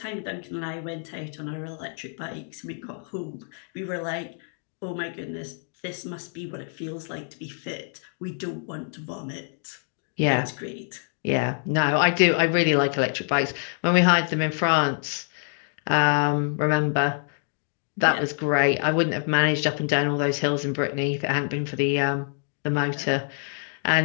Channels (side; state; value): right; silent; 57 dB below the other